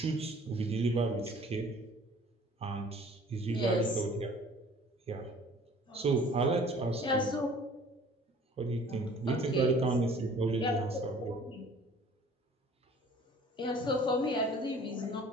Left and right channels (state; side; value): normal; both; correlation 0.50